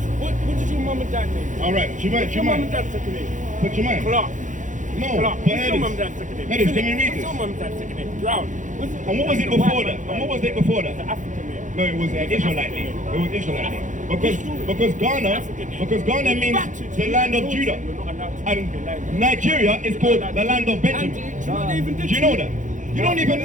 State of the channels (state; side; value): late; left; 0.37 ms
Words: did your mum and dad name? All right, What's your mum and dad's second name? Put your mind. Clark. No, Clark. but What's your mum and dad's second name? Edis, can you read What's this? your mum and dad's second name? Drought. And what was it before that? And what was it before that? The African name. No, it was an Israelite name. It was Israelite name. Because Ghana means the land of Judah. And Nigeria is called the land of Benjamin. Do you know that? You don't even